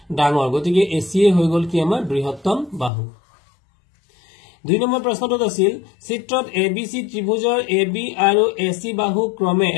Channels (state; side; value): drops out; right; at 2.9 s